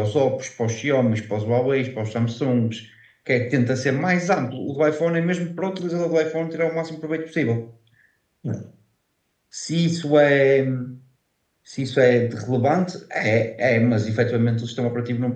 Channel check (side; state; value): both; identical; correlation 1.00